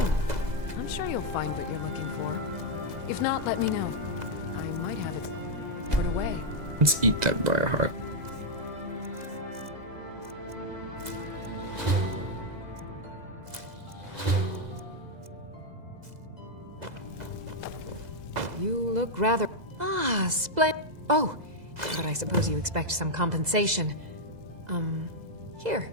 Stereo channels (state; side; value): late; left; 2.0 ms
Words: I'm sure you'll find what you're looking for. If not, let me know. I might have it put away. Let's eat that briar heart. You look rather... Ah, splendid. Oh, but I suppose you expect some compensation. Here.